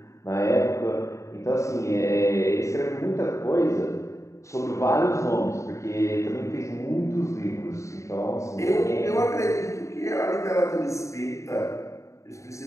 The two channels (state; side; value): late; right; 0.15 ms